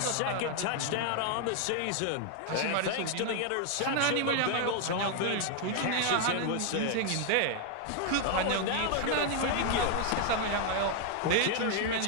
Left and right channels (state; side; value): different; both; correlation 0.00